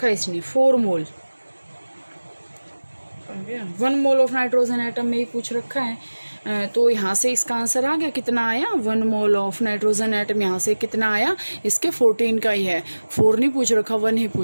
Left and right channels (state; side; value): inverted; both; correlation -1.00